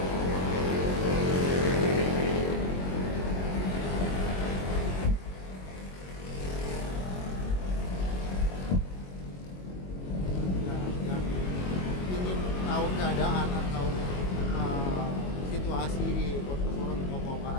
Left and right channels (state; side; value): late; right; 22 ms